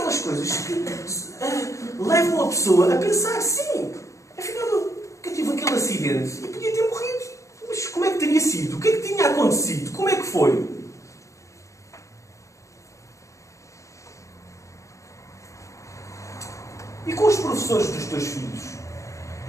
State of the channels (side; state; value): right; late; 0.15 ms